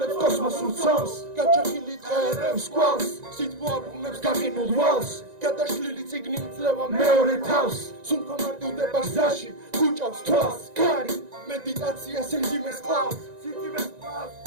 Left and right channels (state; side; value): late; left; 1.9 ms